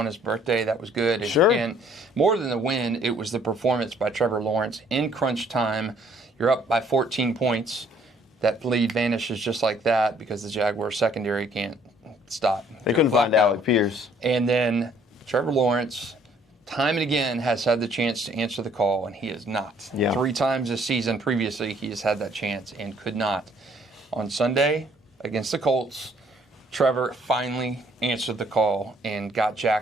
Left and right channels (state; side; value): normal; both; correlation 0.62